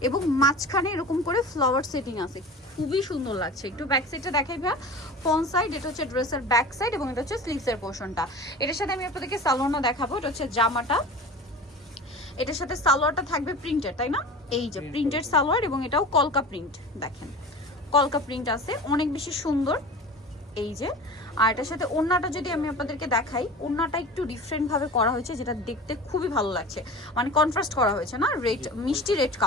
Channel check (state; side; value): normal; both; correlation 0.35